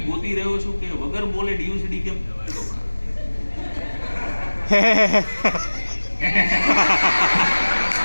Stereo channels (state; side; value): inverted; both; correlation -1.00